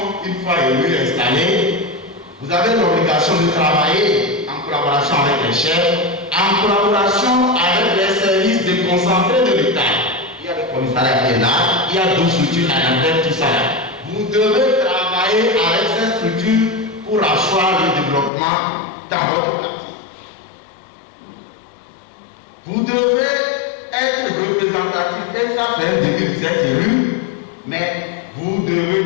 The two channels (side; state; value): right; drops out; at 18.3 s